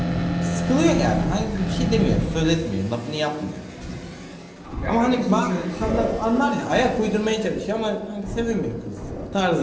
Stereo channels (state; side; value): identical; both; correlation 1.00